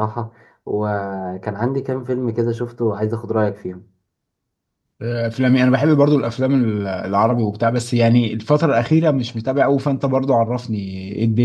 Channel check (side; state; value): both; identical; correlation 1.00